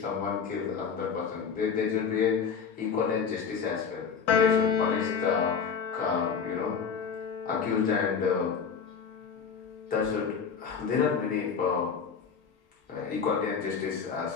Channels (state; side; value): quieter; right; 6.4 dB